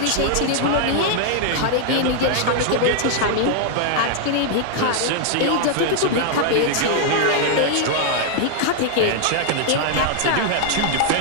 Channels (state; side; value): different; both; correlation 0.00